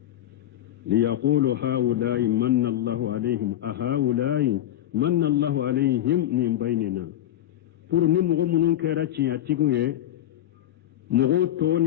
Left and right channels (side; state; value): right; quieter; 12.4 dB